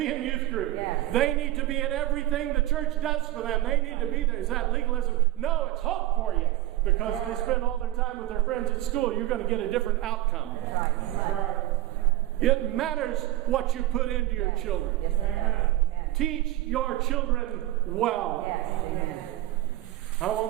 in youth group. They need to be in everything the church does for them. They need to be there. Is that legalism? No, it's hope for you. Because if they spend all their time with their friends at school, you're going to get a different outcome. It matters what you put into your children. Teach your children well. I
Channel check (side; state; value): left; quieter; 15.6 dB